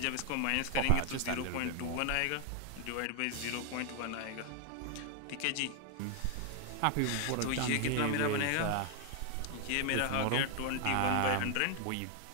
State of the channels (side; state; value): both; different; correlation 0.00